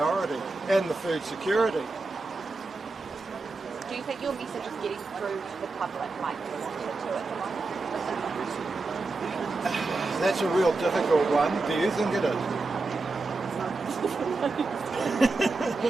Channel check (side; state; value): left; quieter; 3.5 dB